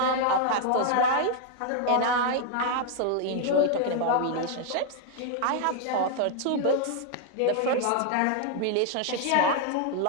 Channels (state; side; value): different; both; correlation 0.00